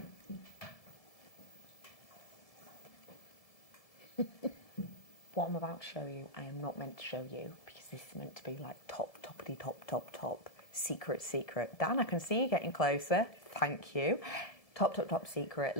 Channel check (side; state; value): right; late; 1.7 ms